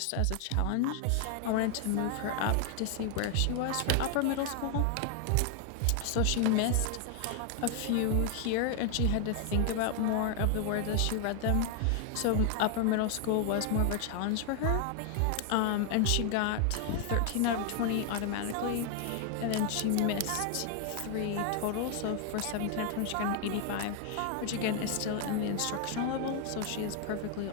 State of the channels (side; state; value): both; different; correlation 0.00